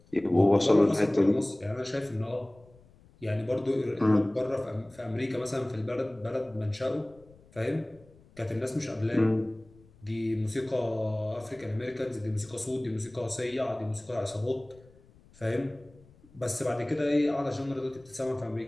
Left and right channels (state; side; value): noise; left; rumble, 27 dB below the sound